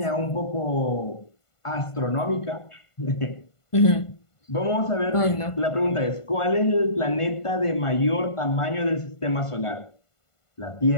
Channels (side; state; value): right; late; 1.5 ms